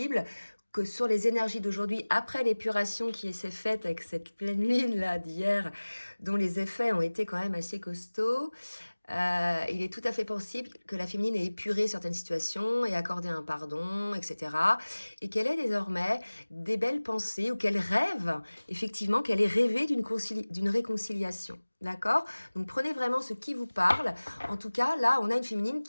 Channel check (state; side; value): inverted; both; correlation -1.00